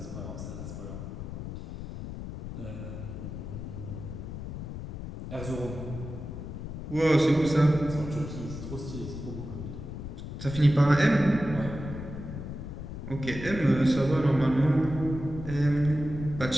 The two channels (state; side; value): noise; left; rumble, 8 dB below the sound